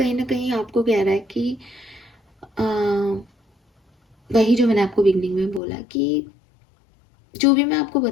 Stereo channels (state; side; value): drops out; right; at 5.6 s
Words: ना कहीं आपको कह रहा है कि वही जो मैंने आपको बिगनिंग में बोला कि जो भी मैं आपको